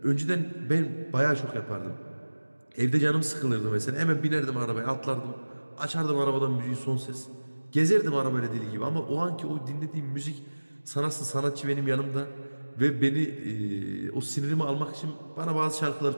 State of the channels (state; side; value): inverted; both; correlation -1.00